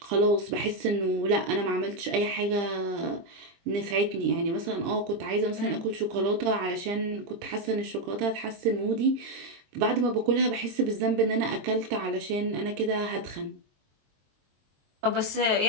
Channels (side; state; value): left; late; 22 ms